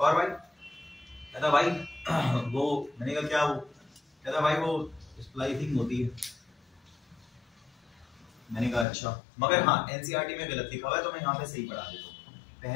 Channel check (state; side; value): drops out; right; at 8.8 s